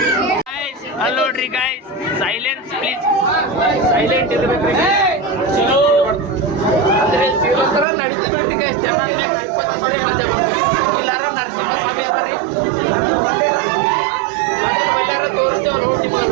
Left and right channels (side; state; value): left; drops out; at 7.9 s